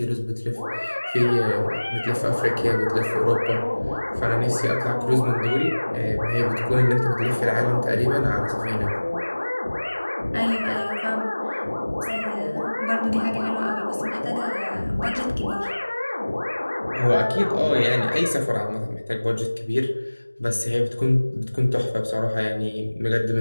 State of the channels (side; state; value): both; inverted; correlation -1.00